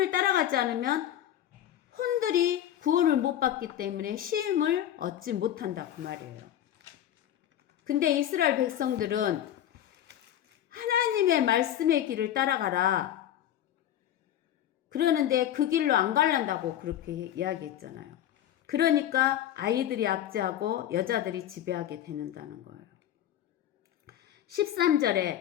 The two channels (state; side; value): quieter; right; 11.4 dB